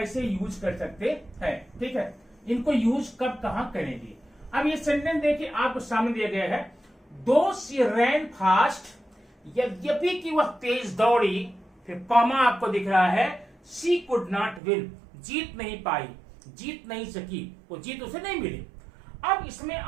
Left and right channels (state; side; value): drops out; left; at 14.6 s